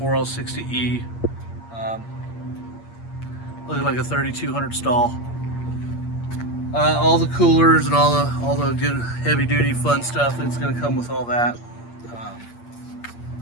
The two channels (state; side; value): late; right; 8.6 ms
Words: Looking like a 3200 stall. All the coolers and all the good heavy duty fun stuff that's going to come with all that.